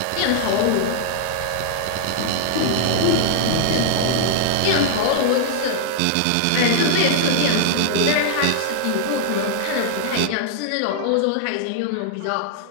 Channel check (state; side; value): different; both; correlation -0.01